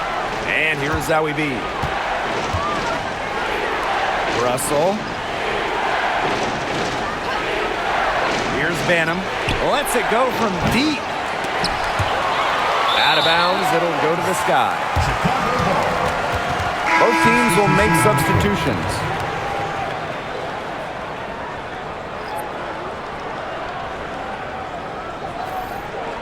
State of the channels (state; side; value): identical; both; correlation 1.00